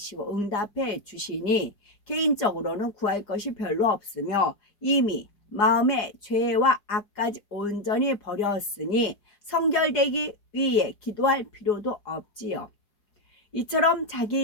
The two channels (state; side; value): late; right; 4.9 ms